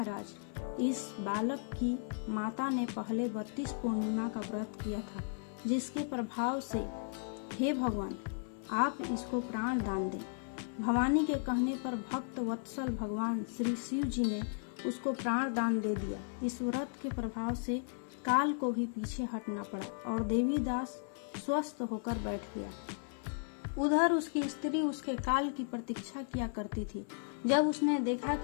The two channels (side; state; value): right; silent; 54 dB below the other